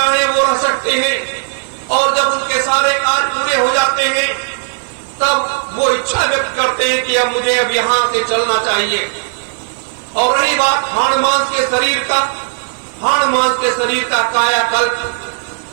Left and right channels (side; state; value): left; silent; digital silence